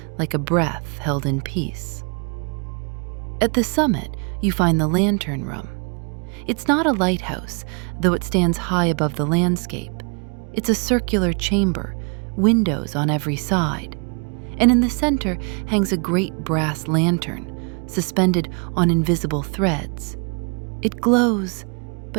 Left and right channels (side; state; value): left; quieter; 36.3 dB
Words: like a breath held in peace. At the summit, you find the lantern room. It's not a lighthouse, though it stands high above the landscape. It's a circular chamber, windows on every side. And in the center hangs a great brass lantern, suspended on invisible threads. It glows,